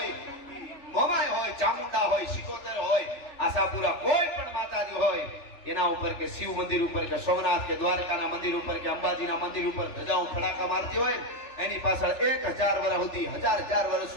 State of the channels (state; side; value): late; right; 3.4 ms